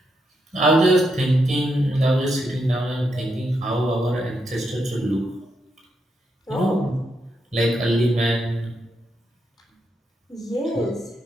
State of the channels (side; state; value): both; normal; correlation 0.82